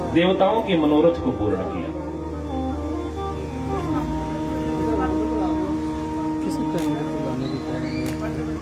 देवताओं के मनोरथ को पूर्ण किया।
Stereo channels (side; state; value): both; identical; correlation 1.00